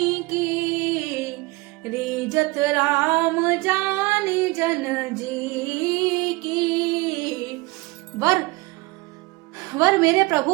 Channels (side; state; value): left; quieter; 23.3 dB